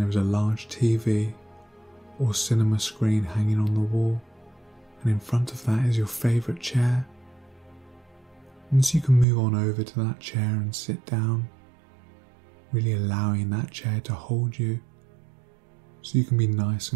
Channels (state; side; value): drops out; left; at 9.2 s